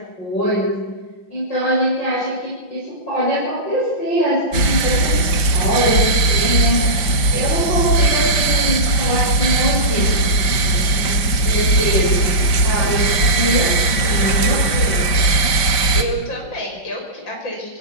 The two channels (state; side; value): late; right; 5.7 ms